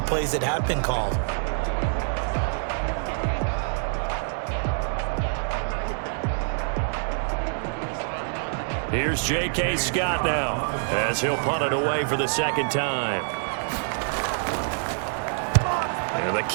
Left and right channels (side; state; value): left; silent; digital silence